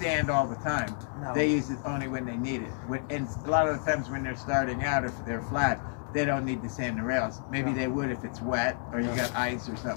all the time. No. They use it only when they need it. And a lot of the times when they're starting out, if they're flat, they don't need to sand the rails. Maybe they would if it's wet or you got ice or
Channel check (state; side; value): silent; right; 58 dB below the other